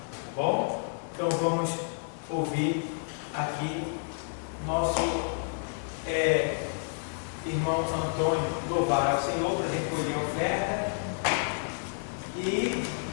Tá bom? Então vamos ouvir aqui nosso irmão Antônio louvar ao Senhor para recolher a oferta e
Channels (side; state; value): right; silent; digital silence